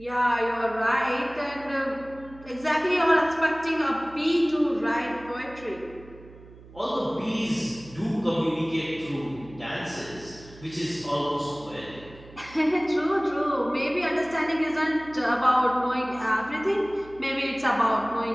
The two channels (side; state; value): right; noise; hum, 20 dB below the sound